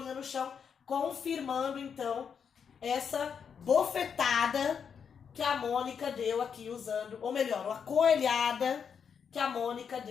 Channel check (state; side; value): quieter; right; 7.0 dB